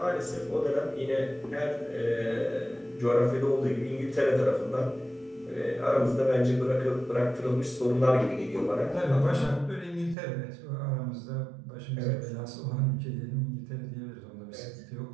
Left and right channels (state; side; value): drops out; left; at 10.2 s